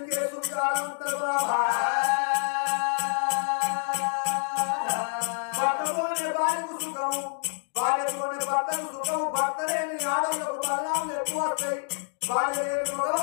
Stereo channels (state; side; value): silent; right; digital silence